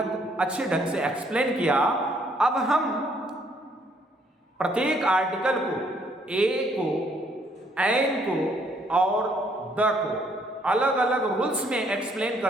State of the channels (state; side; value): normal; both; correlation 0.67